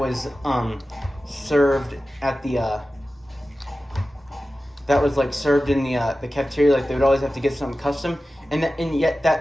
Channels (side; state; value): both; normal; correlation 0.95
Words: served at the that was like served in the cafeteria. Like they would always have to get something custom, and yet